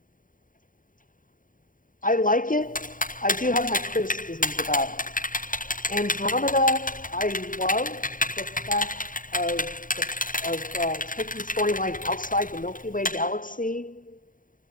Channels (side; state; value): right; late; 0.39 ms